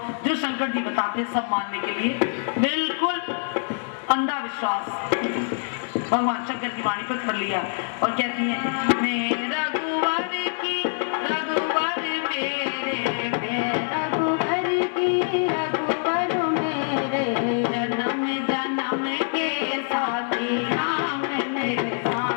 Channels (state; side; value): silent; right; 62 dB below the other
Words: जो शंकर जी बताते सब मानने के लिए बिल्कुल अंधा विश्वास भगवान शंकर की वाणी पर कर लिया। और कहती है मैं रघुवर की रघुवर मेरे रघुवर की रघुवर मेरे जन्म जन्म के साथी राम मेरे